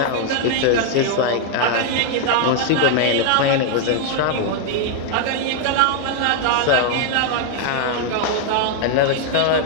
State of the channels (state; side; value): different; both; correlation 0.00